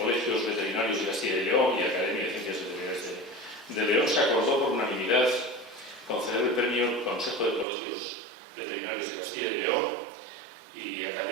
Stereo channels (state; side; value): drops out; left; at 7.7 s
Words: Veterinarios de Castilla y León y Academia de Ciencias Veterinarias de León, se acordó por unanimidad conceder el premio Consejo de Colegios Veterinarios de Castilla y León y